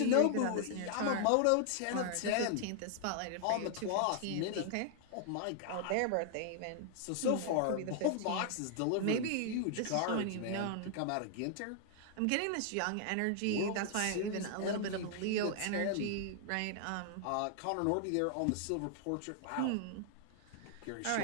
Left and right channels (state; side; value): different; both; correlation 0.00